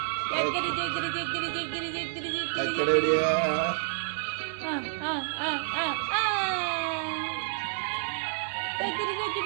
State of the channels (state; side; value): silent; left; 58 dB below the other